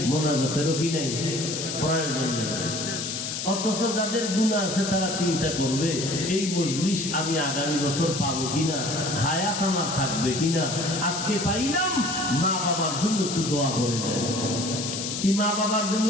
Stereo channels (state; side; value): noise; left; hiss, 4 dB below the sound